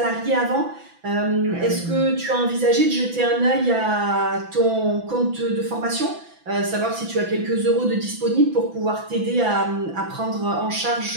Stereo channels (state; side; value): late; left; 6.0 ms